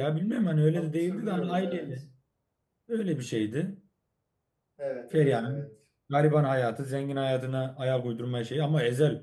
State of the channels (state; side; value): identical; both; correlation 1.00